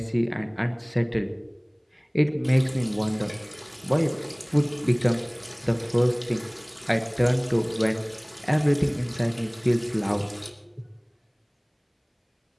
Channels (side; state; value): both; identical; correlation 1.00